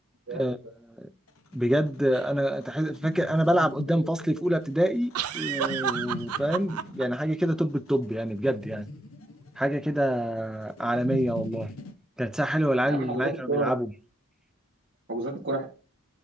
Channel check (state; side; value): normal; both; correlation 0.84